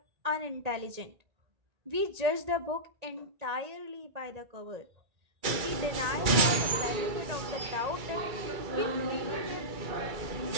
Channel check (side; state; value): left; late; 2.3 ms